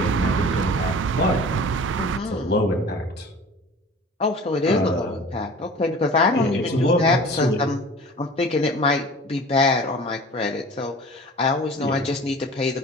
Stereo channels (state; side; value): normal; both; correlation 0.42